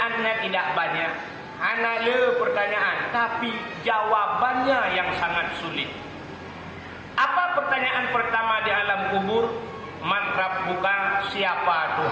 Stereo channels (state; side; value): identical; both; correlation 1.00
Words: tidak banyak, hanya pertanyaan, tapi jawabannya yang sangat sulit. Apa pertanyaan pertama di alam kubur? Man rabbuka, siapa